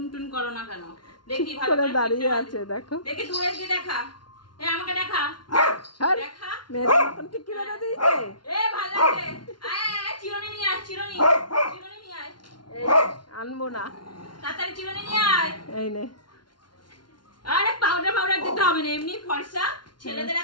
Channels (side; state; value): right; late; 0.71 ms